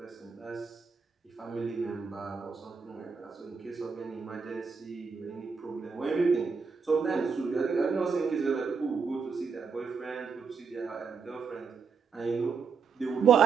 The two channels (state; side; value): quieter; left; 5.5 dB